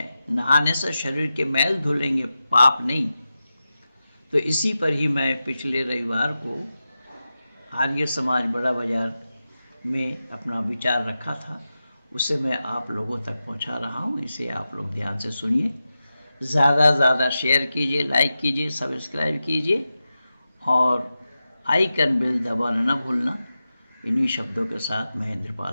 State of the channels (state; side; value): inverted; both; correlation -0.92